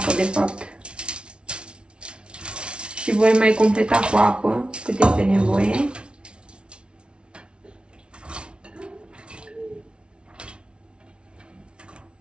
de fapt. Și voi mai completa cu apă, cât este nevoie.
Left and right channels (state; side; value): late; left; 0.057 ms